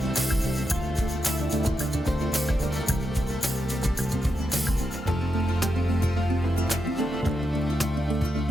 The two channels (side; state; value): both; normal; correlation 0.86